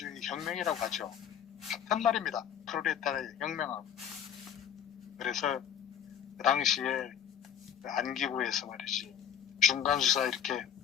혁명이라고 하죠. 같은 말입니다. 프롤레타리아 혁명하고. 그래서 그 당시에 안기부에서 말이지 중간수사 이렇게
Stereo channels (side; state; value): right; quieter; 9.0 dB